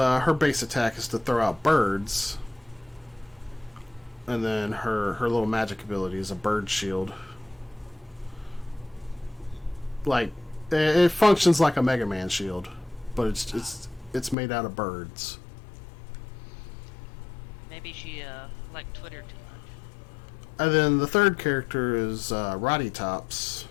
base attack is to throw out birds, and then her little magic ability is a bird shield. Like, it functions like a Mega Man shield, but it's made out of birds. Maybe she liked Twitter too much. And then the third character is Roddy Tops.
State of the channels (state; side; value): drops out; right; at 14.4 s